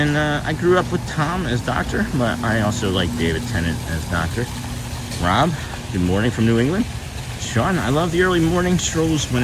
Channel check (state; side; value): identical; both; correlation 1.00